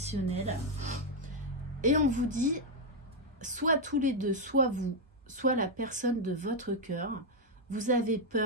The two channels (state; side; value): normal; both; correlation 0.01